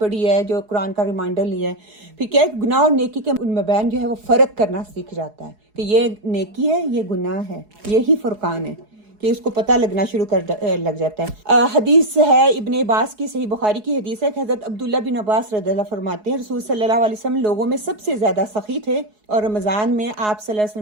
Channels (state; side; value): late; left; 4.7 ms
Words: ہے, جو قرآن کا ریمائنڈر لیا ہے. پھر کیا ہے, گناہ اور نیکی کے مابین جو ہے وہ فرق کرنا سیکھ جاتا ہے کہ یہ نیکی ہے, یہ گناہ ہے, یہی فرقان ہے, کہ اس کو پتہ لگنا شروع لگ جاتا ہے. حدیث ہے ابن عباس کی, صحیح بخاری کی حدیث ہے کہ حضرت عبداللہ بن عباس رضی اللہ فرماتے ہیں رسول صلی اللہ علیہ وسلم لوگوں میں سب سے زیادہ سخی تھے, اور رمضان میں آپ صلی اللہ علیہ